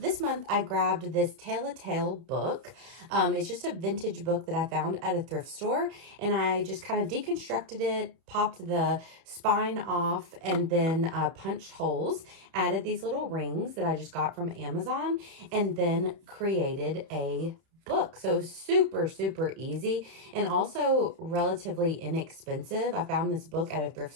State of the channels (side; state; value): left; late; 31 ms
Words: month I grabbed this Tale a Tale book. It's just a vintage book that I found at a thrift store, and I just kind of deconstructed it, popped the spine off, and then punched holes, added these little rings that I just got from Amazon, and then created a book. So super, super easy and also relatively inexpensive. I found this book at a thrift